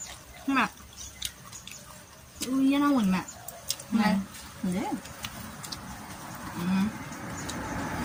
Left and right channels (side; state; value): both; identical; correlation 1.00